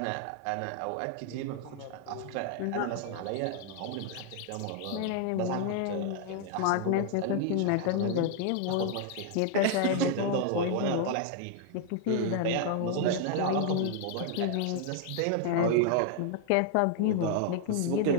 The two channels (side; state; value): both; different; correlation 0.00